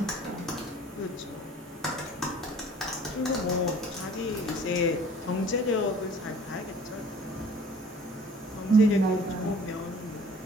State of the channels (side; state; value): both; normal; correlation 0.50